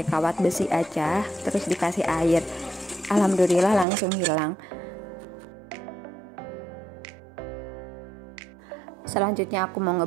kawat besi aja, terus dikasih air. Alhamdulillah langsung hilang. Selanjutnya aku mau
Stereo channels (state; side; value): drops out; left; at 3.9 s